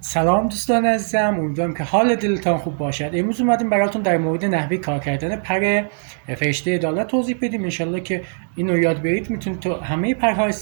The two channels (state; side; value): silent; left; digital silence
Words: سلام دوستان عزیزم، امیدوارم که حال دلتان خوب باشد. امروز اومدیم براتون در مورد نحوه کار کردن پر فرشته عدالت توضیح بدیم. انشالله که اینو یاد برید میتونید تو همه پرها